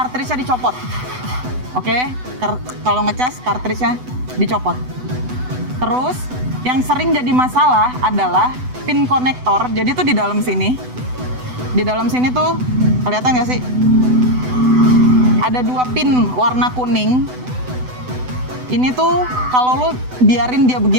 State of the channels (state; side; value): late; left; 8.0 ms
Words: dicopot. Oke? Kalau ngecas, cartridge-nya dicopot. Terus, yang sering jadi masalah adalah pin konektor. Jadi tuh di dalam sini. Di dalam sini tuh, kelihatan nggak sih? Ada 2 pin warna kuning. Ini tuh, kalau lo biarin dia